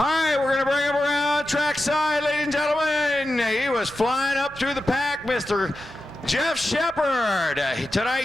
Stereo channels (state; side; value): noise; right; hum, 26 dB below the sound